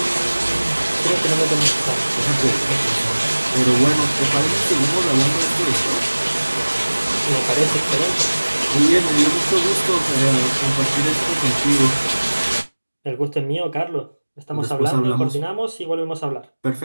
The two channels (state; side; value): inverted; both; correlation -1.00